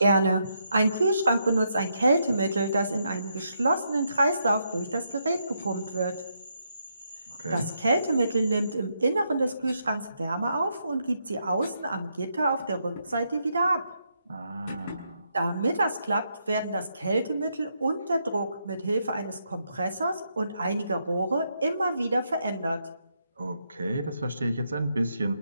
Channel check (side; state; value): both; inverted; correlation -0.79